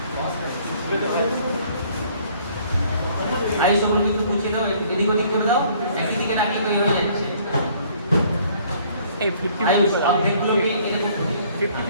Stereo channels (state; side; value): inverted; both; correlation -0.59